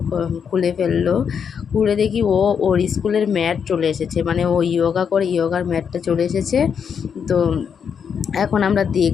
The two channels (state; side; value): quieter; right; 7.1 dB